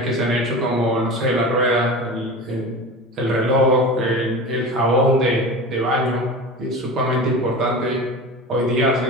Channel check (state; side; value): normal; both; correlation 0.31